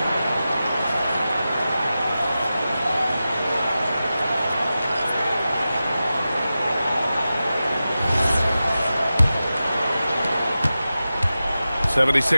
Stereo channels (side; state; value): both; inverted; correlation -0.93